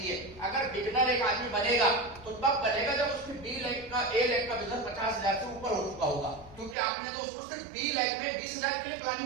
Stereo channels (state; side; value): drops out; left; at 6.8 s